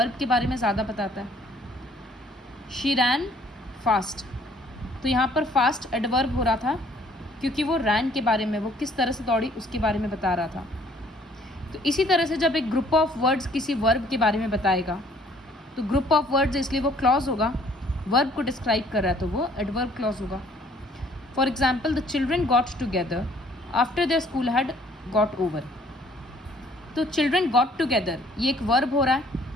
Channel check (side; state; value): both; normal; correlation 0.60